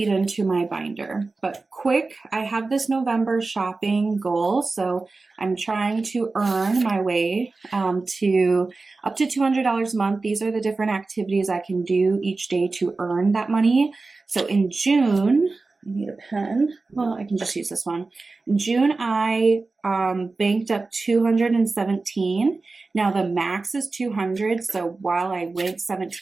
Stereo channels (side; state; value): left; quieter; 3.7 dB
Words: into my binder. But quick, I have this November shopping goal. So I'm trying to earn my way to up to $200 a month. These are the different activities I can do each day to earn that money. So in June, I need a pen. Well, I can just use this one. In June, I banked up 217. Now the max is 200. So while I went